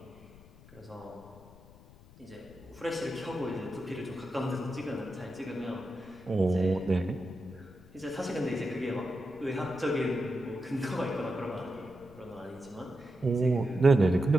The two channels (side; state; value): left; noise; rumble, 22 dB below the sound